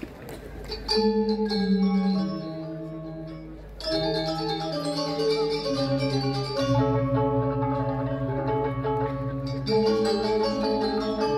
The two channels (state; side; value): identical; both; correlation 1.00